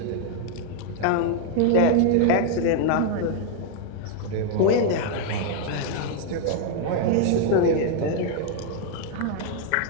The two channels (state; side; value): different; both; correlation 0.00